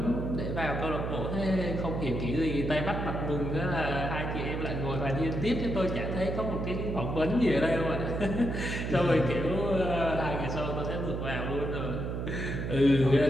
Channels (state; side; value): noise; right; hum, 3 dB below the sound